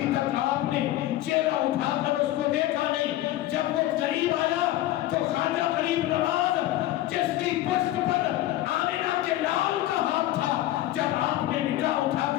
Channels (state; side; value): quieter; right; 14.9 dB